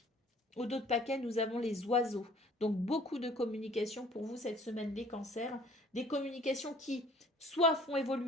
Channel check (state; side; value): normal; both; correlation 0.53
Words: Au dos de paquet, nous avons les oiseaux. Donc beaucoup de communication pour vous cette semaine, les cancers. Des communications qui soit font